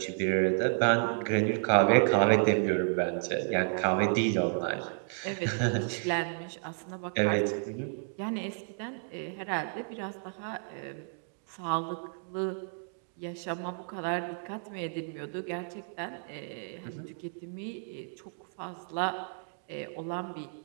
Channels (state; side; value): silent; left; digital silence